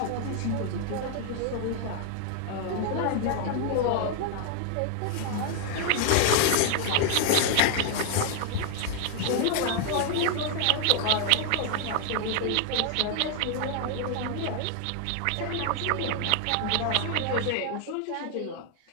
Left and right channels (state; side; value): different; both; correlation 0.00